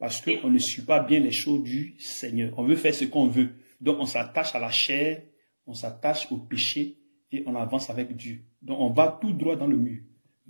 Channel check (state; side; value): inverted; both; correlation -1.00